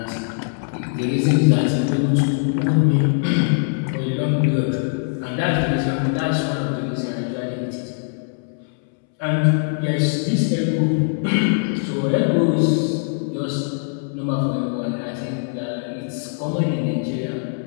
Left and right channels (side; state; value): right; silent; 65 dB below the other